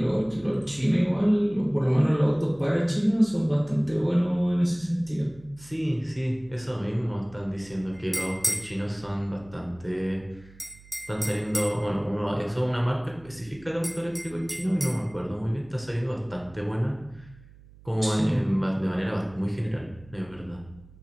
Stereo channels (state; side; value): noise; right; hum, 23 dB below the sound